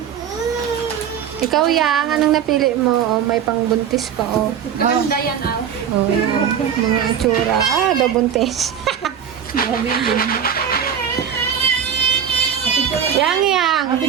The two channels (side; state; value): left; quieter; 8.4 dB